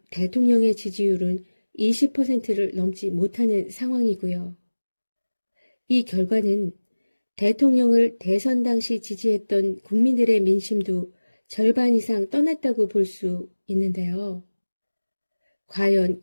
대통령의 지지율은 20%를 넘지 못하는 상황이고요. 이 결과는 대통령을 대선 당시 지지했던 국민들의 민심도 절반 이상 떠났다고 볼 수 있는데요. 과연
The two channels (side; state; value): both; inverted; correlation -1.00